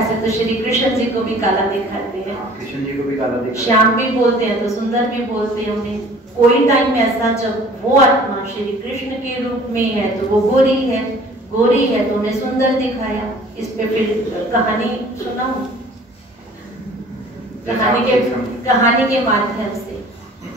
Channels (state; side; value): normal; both; correlation 0.50